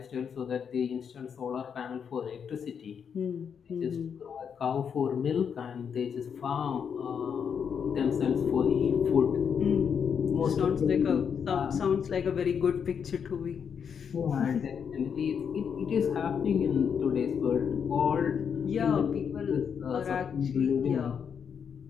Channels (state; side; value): quieter; right; 7.2 dB